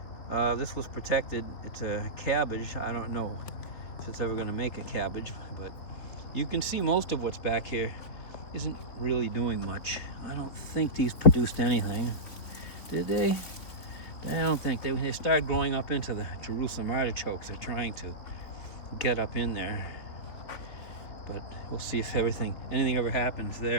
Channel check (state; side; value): late; right; 3.8 ms